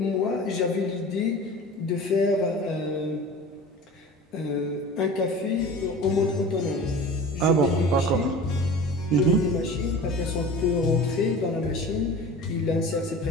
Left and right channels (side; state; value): both; normal; correlation 0.37